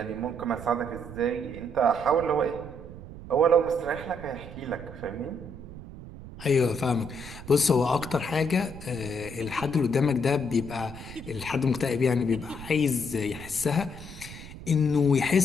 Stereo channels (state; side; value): noise; right; rumble, 13 dB below the sound